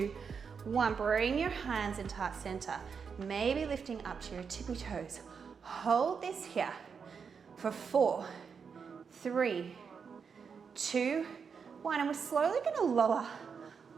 1. Bring your hands into heart center. Maybe lifting up to your tippy toes. Hold this here for 4, 3, 2, 1. And we're slowly going to lower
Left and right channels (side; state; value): left; quieter; 6.1 dB